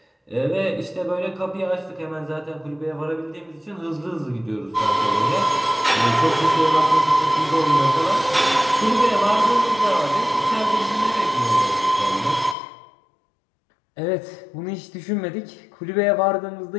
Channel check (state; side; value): drops out; right; at 12.6 s